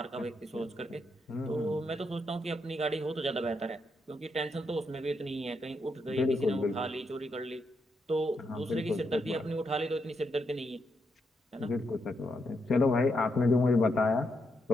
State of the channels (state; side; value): normal; both; correlation 0.80